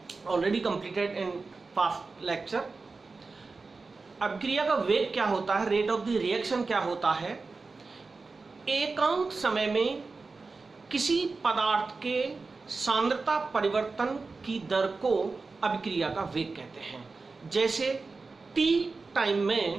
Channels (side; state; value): left; quieter; 4.0 dB